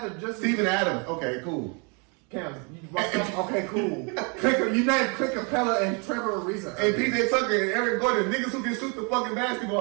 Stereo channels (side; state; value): left; quieter; 34.4 dB